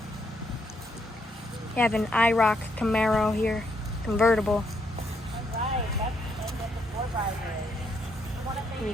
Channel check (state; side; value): normal; both; correlation 0.75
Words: You have an IROC Camaro here, convertible.